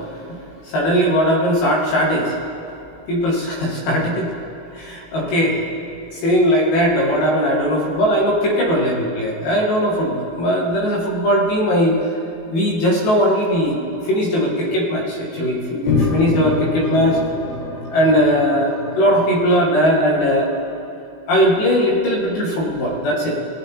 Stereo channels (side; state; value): right; late; 19 ms